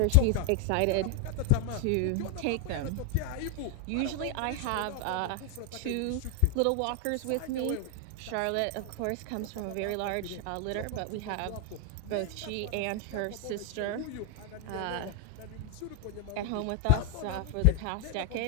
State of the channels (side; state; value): both; different; correlation 0.00